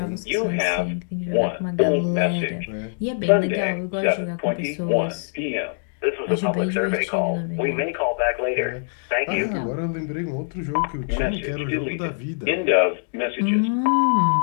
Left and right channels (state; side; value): silent; right; digital silence